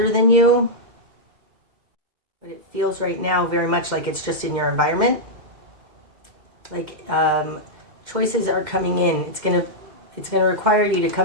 than you, but it feels right now very much like it's just in your environment. Like choices are coming in. It's gonna require you to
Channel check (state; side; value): late; left; 2.1 ms